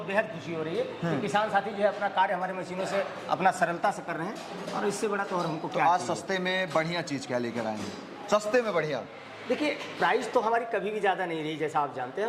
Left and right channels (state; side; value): identical; both; correlation 1.00